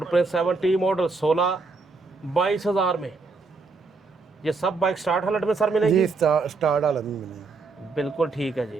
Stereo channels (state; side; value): quieter; left; 4.1 dB